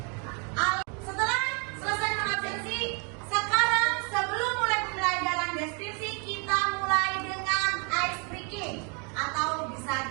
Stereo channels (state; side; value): quieter; left; 35.2 dB